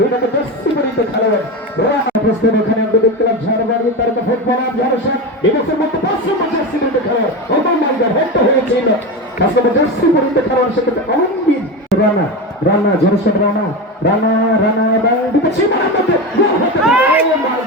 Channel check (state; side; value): normal; both; correlation 0.21